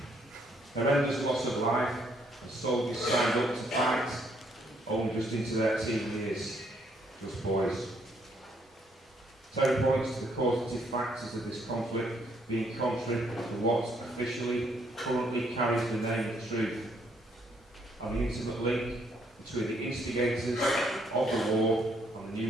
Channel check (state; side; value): normal; both; correlation 0.69